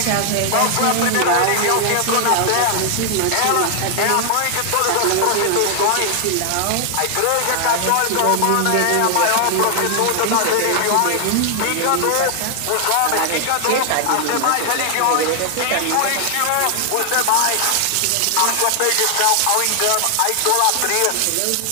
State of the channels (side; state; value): both; different; correlation 0.00